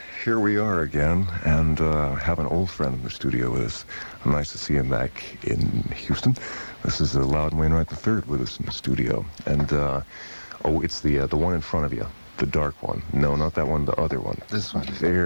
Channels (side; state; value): both; inverted; correlation -1.00